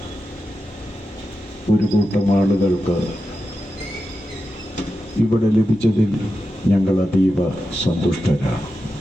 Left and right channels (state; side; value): normal; both; correlation 0.90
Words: ഒരു കൂട്ടം ആളുകൾക്ക് ഇവിടെ ലഭിച്ചതിൽ ഞങ്ങൾ അതീവ സന്തുഷ്ടരാണ്.